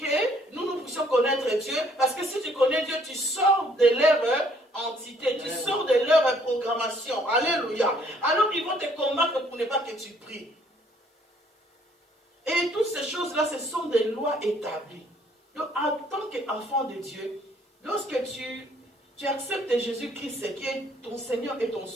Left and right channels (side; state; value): both; normal; correlation 0.63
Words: nous puissions connaître Dieu. Parce que si tu connais Dieu, tu sors de leur entité, tu sors de leur programmation. Alléluia. Alors ils vont te combattre pour ne pas que tu pries. Et toutes ces choses-là, ce sont des lois établies. Donc en tant qu'enfant de Dieu, lorsque tu acceptes Jésus-Christ qui est ton Seigneur et ton